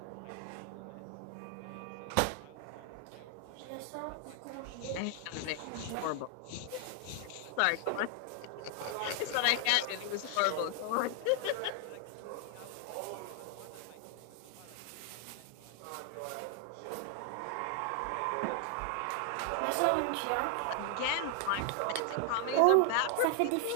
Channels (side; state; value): both; different; correlation 0.00